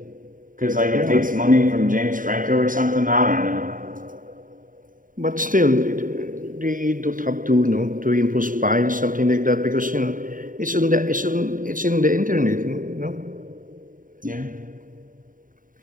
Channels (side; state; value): left; late; 0.39 ms